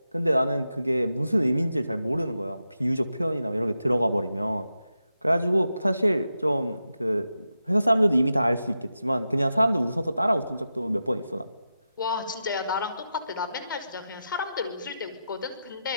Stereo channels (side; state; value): both; inverted; correlation -0.89